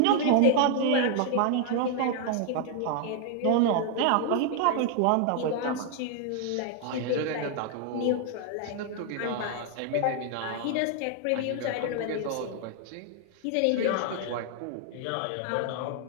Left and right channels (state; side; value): different; both; correlation 0.00